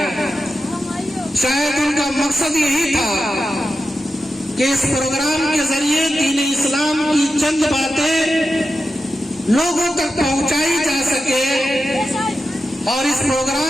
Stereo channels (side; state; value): both; normal; correlation 0.91